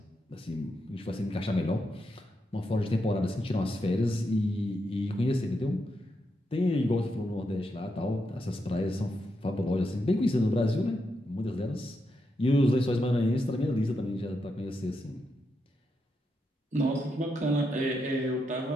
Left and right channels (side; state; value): both; normal; correlation 0.83